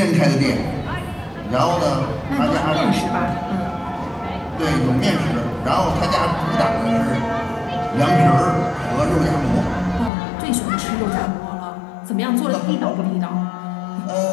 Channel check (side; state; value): right; drops out; at 10.1 s